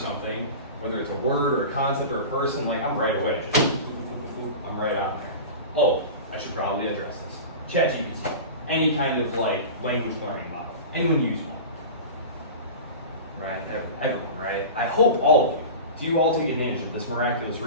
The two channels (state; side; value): inverted; both; correlation -0.31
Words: whether it's a word or a concept or a person, like, I'm right away. I'm right on there. Oh, I should probably address this. ChatGPT, any kind of like language learning model. Anyone use one? Right? Everyone, right? I hope all of you. Do you all take advantage of this miraculous